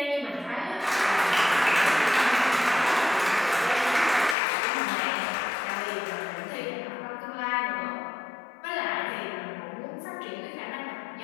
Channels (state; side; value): drops out; right; at 4.4 s